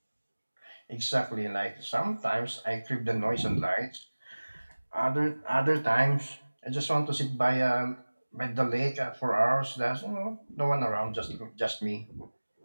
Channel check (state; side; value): inverted; both; correlation -1.00